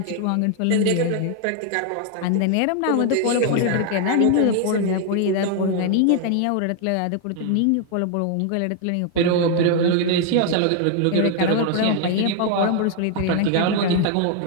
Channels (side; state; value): both; different; correlation 0.00